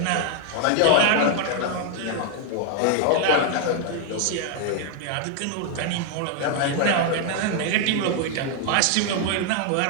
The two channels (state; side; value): different; both; correlation 0.00